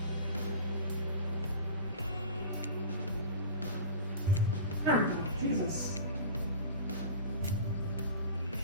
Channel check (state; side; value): inverted; both; correlation -0.37